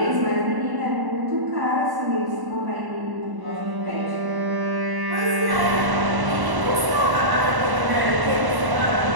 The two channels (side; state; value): left; late; 1.0 ms